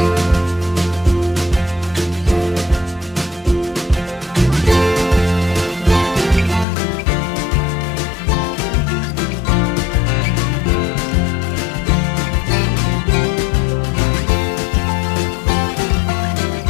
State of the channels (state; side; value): drops out; right; at 6.7 s